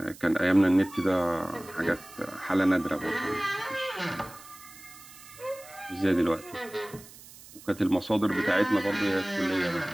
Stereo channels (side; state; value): right; noise; hiss, 19 dB below the sound